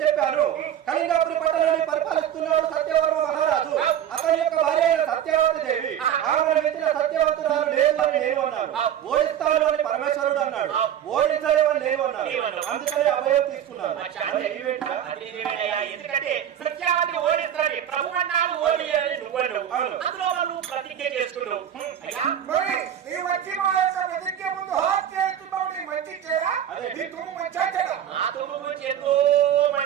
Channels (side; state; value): left; quieter; 10.1 dB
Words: చెప్పాను కళింగపురి పట్టణాన్ని పరిపాలిస్తున్నాడు సత్యవర్మ మహారాజు. అతని యొక్క భార్య సత్యవతి దేవి. ఆమెను మించిన సత్యవంతురాలు లేదు అని నేను అన్నాను. ఓడిస్తాను అని పరమేశ్వరుడు అన్నాడు. ఓడించలేమని నేను అన్నాను. అందుకని అభయం తీసుకున్నాను. ఎందుకంటే సత్యావతిని ఓడిస్తాడు ప్రభు అన్నాడు, ఓడి అని నువ్వు అందులో నువ్వు ప్రతిజ్ఞ చేసుకున్నావు. వచ్చి మా యొక్క ప్రతిజ్ఞ ముందు హాట్ చేస్తున్నావు. మంచి చేయరా నీ తుమ్ము మంచిగా చేయరా నా తుమ్ము గురించి ఎంతో